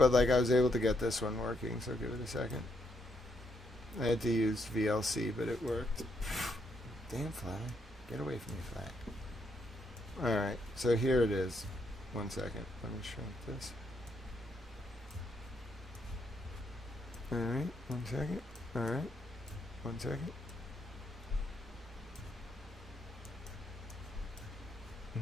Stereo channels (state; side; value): normal; both; correlation 0.76